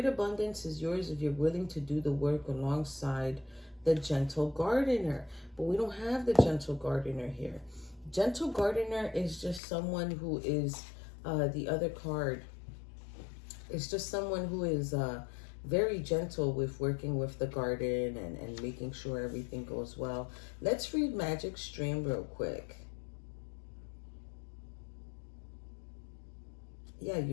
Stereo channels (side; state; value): right; drops out; at 9.6 s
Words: abundance is yours if you're willing to do the work alongside the gentle gardener. But we don't have the gentle gardener here. Gentle gardener is just someone who is, the other card, it's just someone who is very gentle with working with the garden and making sure everything goes well. Let's read Magic Stream real quick. Yeah,